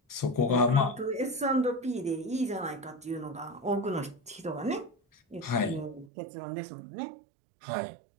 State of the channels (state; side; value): drops out; left; at 6.1 s